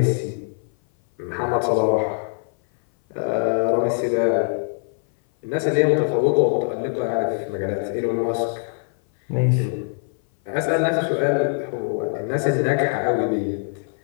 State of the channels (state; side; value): silent; right; 59 dB below the other